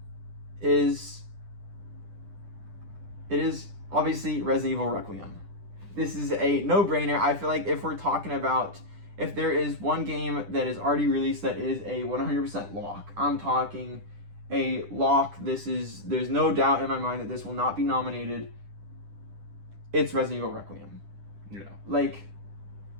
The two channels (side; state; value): left; late; 10 ms